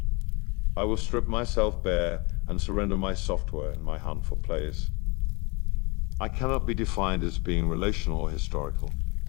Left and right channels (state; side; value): quieter; right; 28.3 dB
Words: I will strip myself bare and surrender my software in my hunt for place. I cannot be defined as being relational or historical.